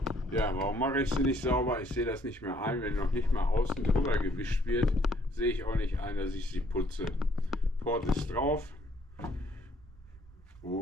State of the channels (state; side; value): normal; both; correlation 0.65